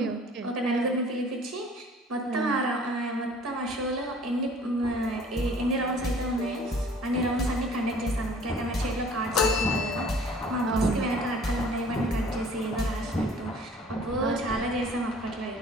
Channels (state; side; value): normal; both; correlation 0.51